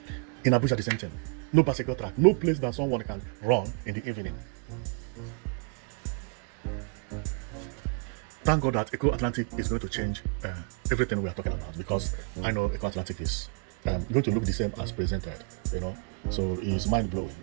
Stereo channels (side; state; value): left; quieter; 39.6 dB